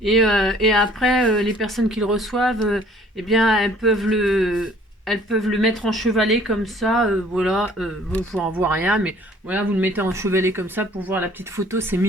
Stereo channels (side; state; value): both; normal; correlation 0.55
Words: Et après, les personnes qui le reçoivent, eh bien, elles peuvent le mettre en chevalet comme ça, voilà, vous n'en voit rien, mais voilà, vous le mettez en chevalet comme ça pour voir la petite photo, c'est